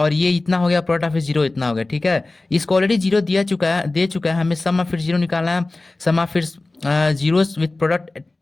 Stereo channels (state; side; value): quieter; right; 3.1 dB